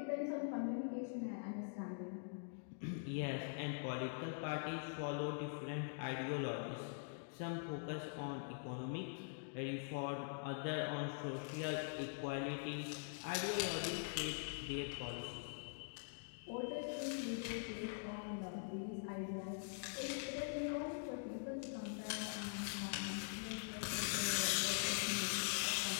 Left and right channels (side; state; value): right; silent; digital silence